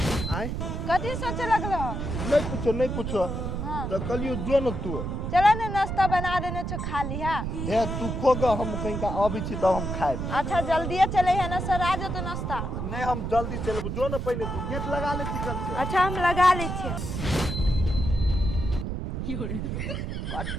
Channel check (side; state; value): right; noise; rumble, 3 dB below the sound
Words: आए कथी सोचे लगल? नहीं पूछो। हाँ तो कलियो जो न तू चला ना नाश्ता बना देने छो खा लिहा। ए तू खोगा, हम कहीं का अभी छी तो हम खाए। अच्छा जल्दी चले है ना सर, आ जाओ तो नाश्ता। नहीं हम जल्दी चले। जो न पहले तू गेट लगा ले चिकन से। अच्छा हम लगा ले छे।